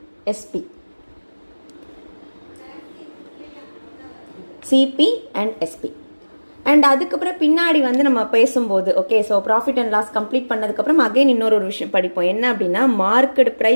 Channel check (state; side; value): inverted; both; correlation -1.00